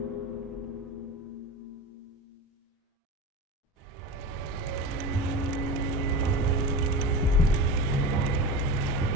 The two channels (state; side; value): normal; both; correlation 0.28